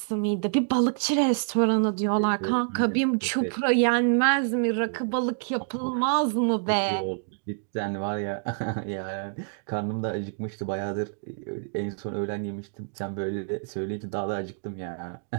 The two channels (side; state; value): left; silent; digital silence